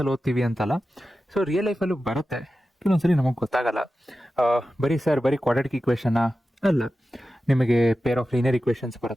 ಓದ್ತೀವಿ ಅಂತಲ್ಲ, ಸೊ ರಿಯಲ್ ಲೈಫಲ್ಲೂ ಬರುತ್ತೆ. ಕೆಲವೊಂದ್ಸರಿ ನಮಗೆ ಗೊತ್ತಾಗಲ್ಲ. ಬರೀ ಕ್ವಾಡ್ರಾಟಿಕ್ ಇಕ್ವೇಷನ್ನ ಅಲ್ಲ, ನಿಮಗೆ ಪೇರ್ ಆಫ್ ಲೀನಿಯರ್ ಇಕ್ವೇಷನ್ಸ್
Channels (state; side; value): normal; both; correlation 0.93